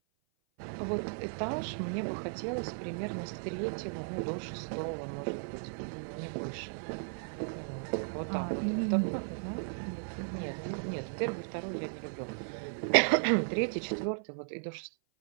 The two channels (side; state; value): left; silent; 54 dB below the other